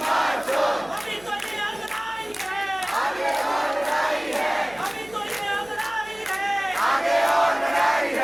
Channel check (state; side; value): noise; right; hum, 25 dB below the sound